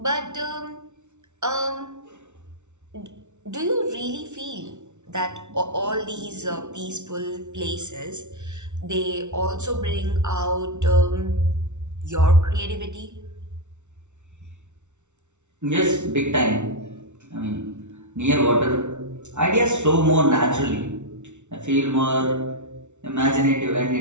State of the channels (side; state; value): left; late; 0.83 ms